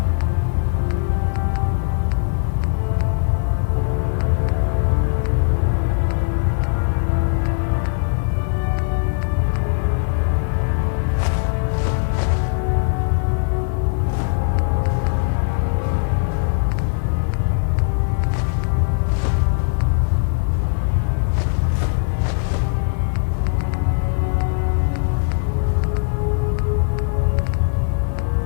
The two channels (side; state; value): right; silent; 66 dB below the other